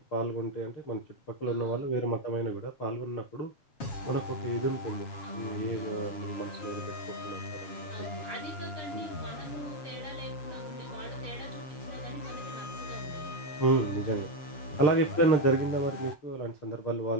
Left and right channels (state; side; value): late; right; 7.3 ms